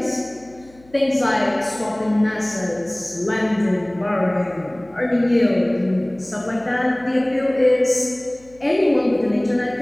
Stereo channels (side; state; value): left; noise; hum, 28 dB below the sound